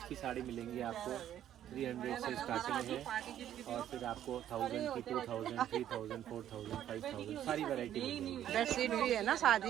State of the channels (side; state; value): left; quieter; 11.2 dB